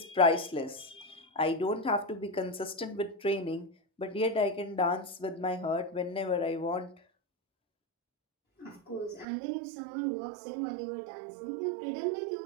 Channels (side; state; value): left; drops out; at 9.2 s